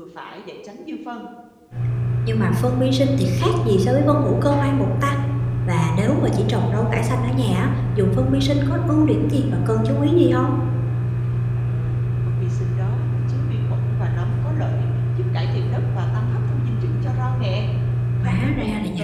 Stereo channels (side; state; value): both; identical; correlation 1.00